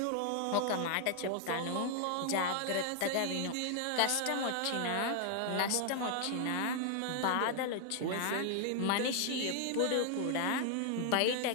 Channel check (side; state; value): both; different; correlation 0.00